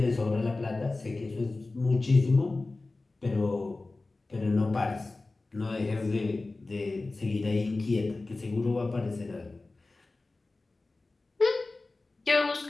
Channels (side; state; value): right; quieter; 3.3 dB